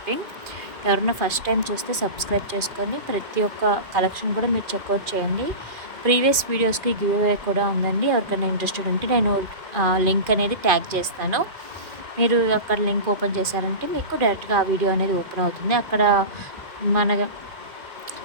ఎవరైనా ఫస్ట్ టైం చూస్తే సబ్స్క్రైబ్ చేసుకొని ప్రతి ఒక్క కలెక్షన్ కూడా మీరు చెక్అవుట్ చేయండి. ప్రీవియస్ వీడియోస్కి గివ్ అవే కూడా ఉందండి. ఎవరికైనా ఇంట్రెస్టెడ్ ఉంటే నేను లింక్ అనేది ట్యాగ్ చేస్తాను. మీరు అక్కడ లింక్ ఓపెన్ చేశారంటే మీకు డైరెక్ట్గా ఆ వీడియో అనేది ఓపెన్ అవుతుంది. అక్కడ మన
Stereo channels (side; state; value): left; late; 2.4 ms